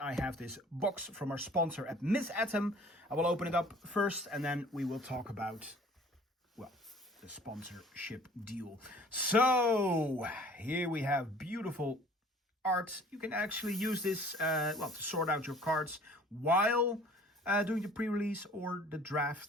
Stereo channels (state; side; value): normal; both; correlation 0.51